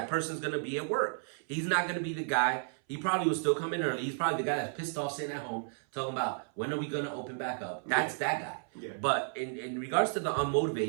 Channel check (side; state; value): left; silent; 56 dB below the other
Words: person's going to be at work. He's not going to be the guy. He probably will still come in early. He's probably the guy that's pissed off sitting at home talking about when are we going to open back up. That's that guy. Yeah. But in regards to the